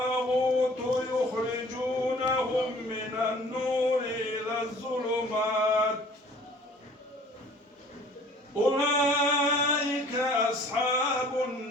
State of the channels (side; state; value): both; normal; correlation 0.51